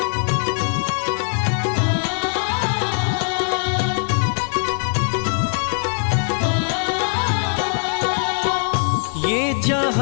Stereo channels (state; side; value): silent; right; 65 dB below the other